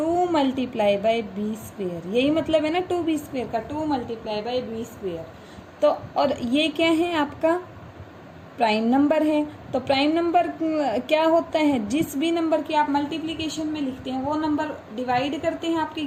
मल्टीप्लाई बाई b स्क्वेयर। यही मतलब है ना 2b स्क्वेयर का, 2 मल्टीप्लाई बाई b स्क्वेयर। तो और ये क्या है, आपका प्राइम नंबर है। तो प्राइम नंबर क्या होता है, जिस भी नंबर की आप मल्टीप्लिकेशन में लिखते हैं वो नंबर डिवाइड करते हैं आपके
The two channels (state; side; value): identical; both; correlation 1.00